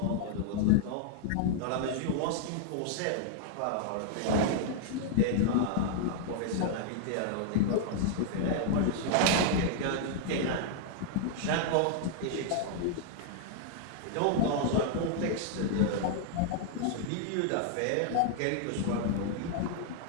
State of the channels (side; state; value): both; different; correlation -0.01